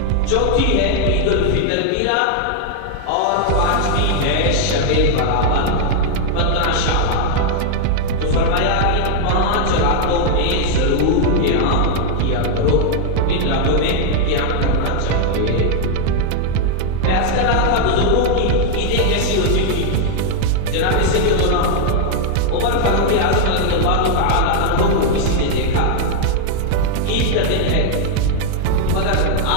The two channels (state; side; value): different; both; correlation 0.00